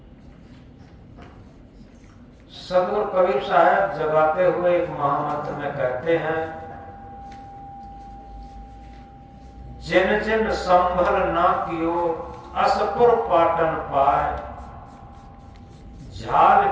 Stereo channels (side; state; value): both; identical; correlation 1.00